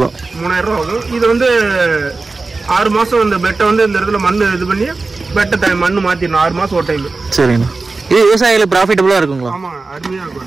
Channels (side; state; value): left; quieter; 3.7 dB